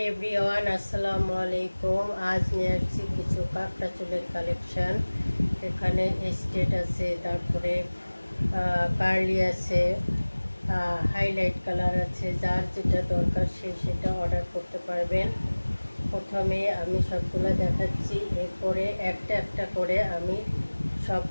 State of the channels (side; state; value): both; inverted; correlation -1.00